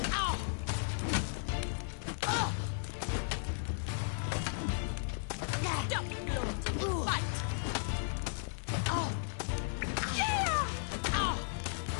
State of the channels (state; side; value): silent; right; digital silence